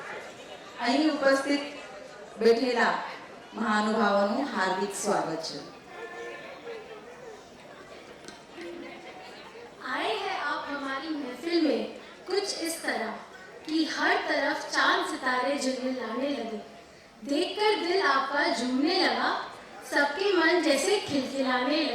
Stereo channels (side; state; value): both; identical; correlation 1.00